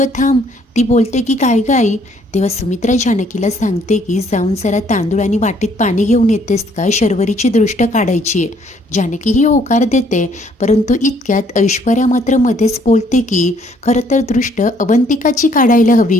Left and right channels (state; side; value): normal; both; correlation 0.64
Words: थांब. ती बोलते की काय गाई? तेव्हा सुमित्रा जानकीला सांगते की जाऊन जरा तांदूळ आणि वाटीत पाणी घेऊन येतेस का, शर्वरीची दृष्ट काढायची आहे. जानकी ही होकार देते, परंतु इतक्यात ऐश्वर्या मात्र मध्येच बोलते की खरं तर दृष्ट अवंतिकाची काढायला